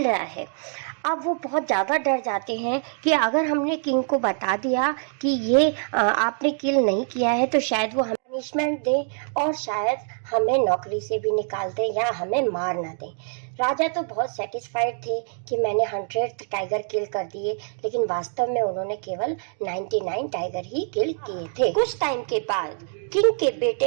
रहा है। अब वो बहुत ज़्यादा डर जाते हैं कि अगर हमने किंग को बता दिया कि ये आपने किल नहीं किया है तो शायद वो हमें पनिशमेंट दे और शायद हमें नौकरी से भी निकाल दें या हमें मार ना दें। राजा तो बहुत सेटिस्फाइड थे कि मैंने 100 टाइगर किल कर दिए, लेकिन वास्तव में उन्होंने केवल 99 टाइगर ही किल किए थे। कुछ टाइम के बाद किंग के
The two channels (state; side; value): silent; left; 57 dB below the other